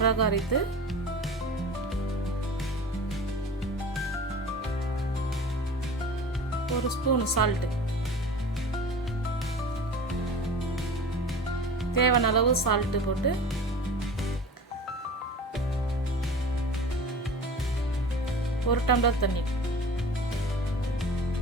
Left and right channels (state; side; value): normal; both; correlation 0.38